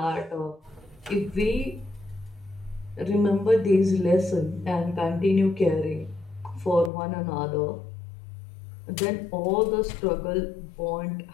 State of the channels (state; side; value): drops out; right; at 6.9 s